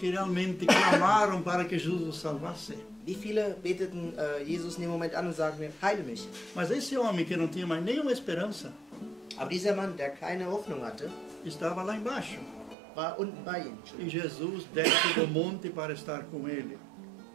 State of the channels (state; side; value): drops out; left; at 12.8 s